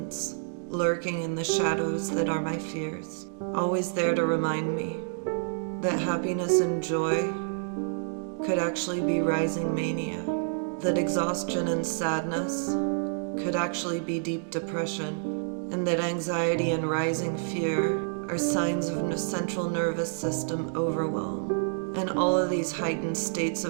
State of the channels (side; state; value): left; silent; digital silence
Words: lurking in the shadows that are my fears, always there to remind me that happiness and joy could actually be rising mania, that exhaustion and sadness could actually be deep depression, and that anxiety and rising fear are signs of central nervous system overwhelm. And all of these heightened states